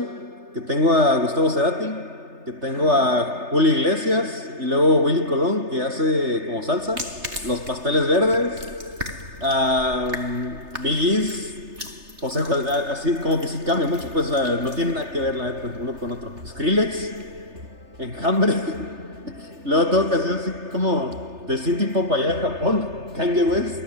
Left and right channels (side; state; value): left; late; 3.3 ms